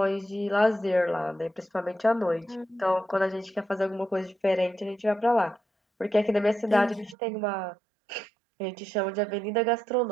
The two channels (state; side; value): drops out; left; at 7.2 s